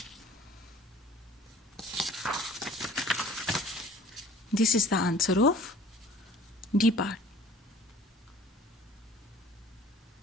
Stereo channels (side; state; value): both; normal; correlation 0.49